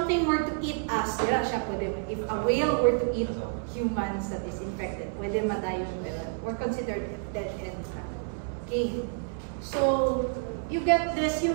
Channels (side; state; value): left; silent; 59 dB below the other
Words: were to eat us, dira siya pwede. If a whale were to eat humans that is infected, pwede madayon, pero we're considered dead end. Okay. So, you get this,